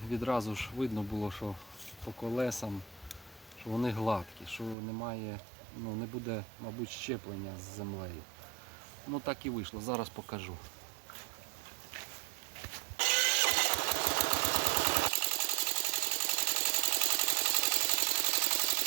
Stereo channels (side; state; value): left; drops out; at 4.8 s